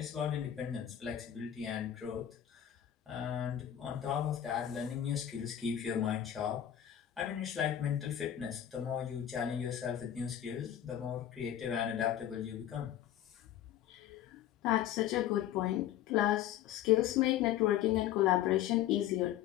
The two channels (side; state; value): right; quieter; 11.1 dB